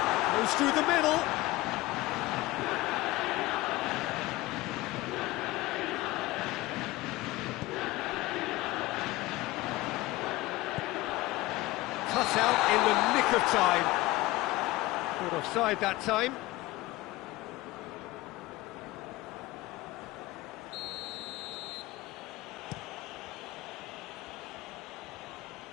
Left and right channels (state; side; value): quieter; right; 19.2 dB